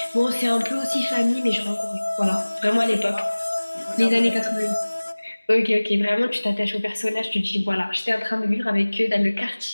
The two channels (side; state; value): both; inverted; correlation -1.00